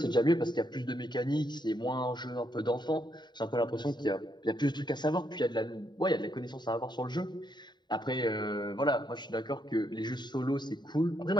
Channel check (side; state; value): right; late; 0.21 ms